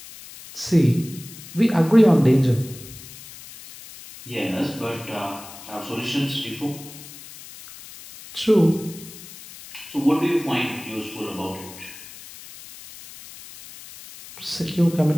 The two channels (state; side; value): noise; left; hiss, 16 dB below the sound